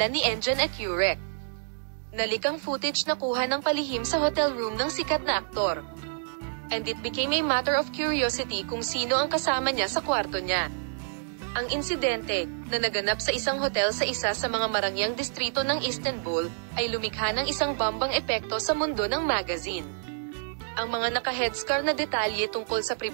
ni Engin Akyurek. Nalikang footage na kuha ng palihim sa hotel room ng sikat na aktor. And it became a matter of curiosity kung sino ang kasama niya sa kwarto niya. Ang insidente, na naganap sa isang hotel sa isa sa mga marangyang distrito ng Istanbul, ay lumikha ng isang bambang epekto sa mundo ng magazine. Ang mga naka-headscar na detalye tungkol sa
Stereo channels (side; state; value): left; silent; digital silence